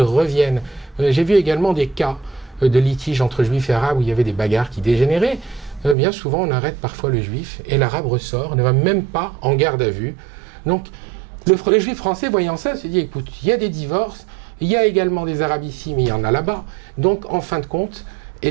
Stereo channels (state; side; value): drops out; left; at 6.0 s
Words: reviennent. J'ai vu également des cas de litiges entre juifs et arabes où il y avait des bagarres qui dégénéraient. Bien souvent, on arrête parfois le juif et l'arabe ressort, ne va même pas en garde à vue. Donc, le juif français, voyant ça, se dit, écoute, il y a des divorces, il y a également des arabes ici, mais il y en a là-bas. Donc, en fin de compte,